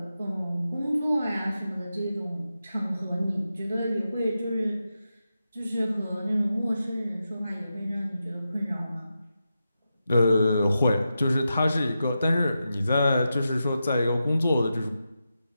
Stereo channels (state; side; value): inverted; both; correlation -0.89